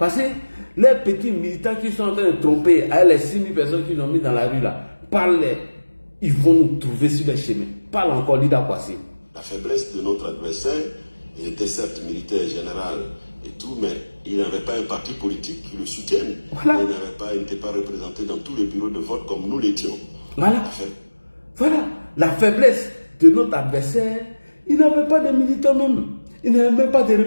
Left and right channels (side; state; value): both; inverted; correlation -1.00